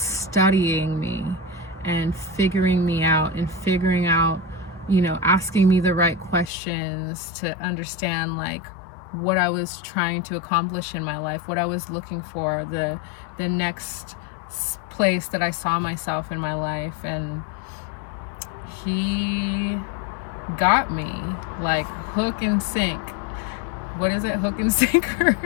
me and figuring me out and figuring out, asking me the right questions to understand, like, what I was trying to accomplish in my life, what I was looking for, the next place that I saw myself in my life. And he got me, like, hook and sink. What is it? Hook and sinker?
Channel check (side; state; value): right; drops out; at 6.5 s